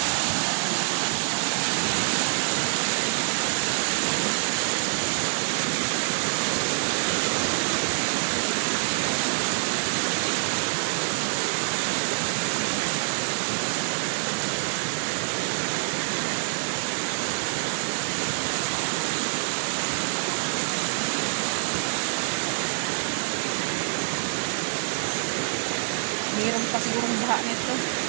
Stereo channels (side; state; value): left; silent; digital silence